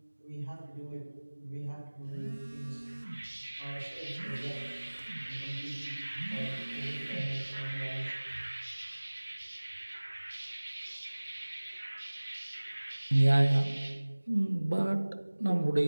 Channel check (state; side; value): inverted; both; correlation -1.00